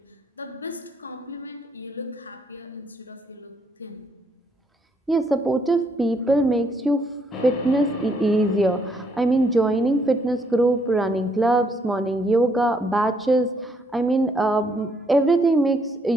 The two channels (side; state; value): both; normal; correlation 0.71